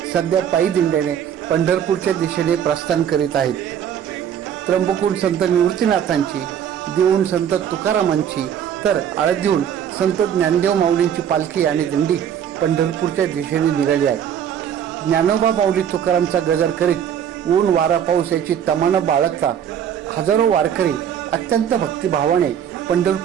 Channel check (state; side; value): quieter; left; 9.1 dB